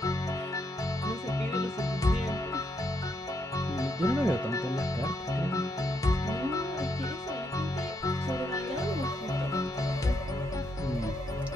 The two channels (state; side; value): normal; both; correlation 0.78